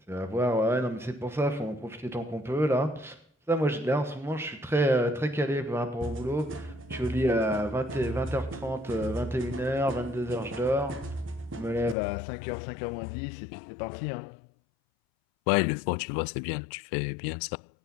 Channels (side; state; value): right; drops out; at 12.0 s